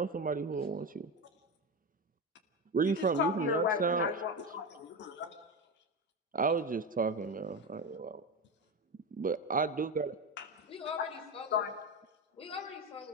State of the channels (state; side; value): normal; both; correlation 0.18